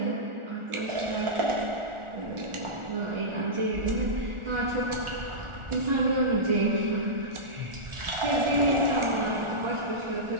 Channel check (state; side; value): late; left; 1.4 ms